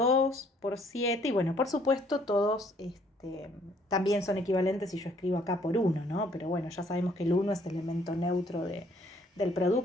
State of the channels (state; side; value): normal; both; correlation 0.63